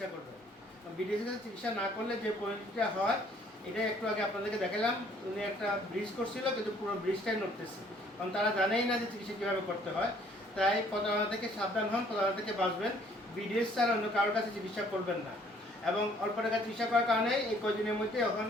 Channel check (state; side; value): normal; both; correlation 0.60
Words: করবেন। বিডিএসের কাছে চিকিৎসা না করলে যে পরিণতিটা হয় এটা একটু আগে আপনাদেরকে দেখালাম। উনি একটা ব্রিজ করছিল কিন্তু পুরো ব্রিজটাই নড়তেছে, কারণ তারা জানেই না যে চিকিৎসা কীভাবে করতে হয়। তাই প্রতারণা থেকে সাবধান হন, প্রতারণা থেকে বাঁচবেন। বিডিএস ছাড়া অন্য কারোর কাছে চিকিৎসা করবেন না। এবং অল্প টাকা চিকিৎসা করার কারণে এই কদিনের মধ্যে এখন